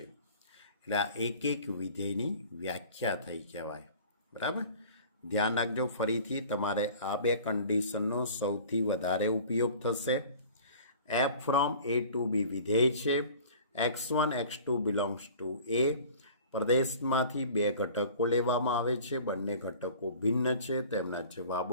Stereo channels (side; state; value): both; inverted; correlation -0.45